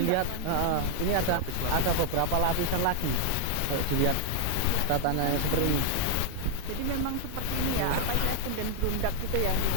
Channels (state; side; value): different; both; correlation -0.01